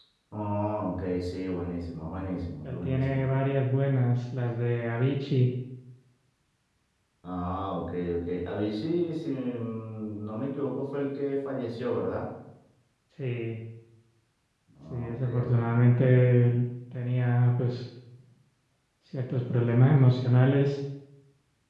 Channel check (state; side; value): identical; both; correlation 1.00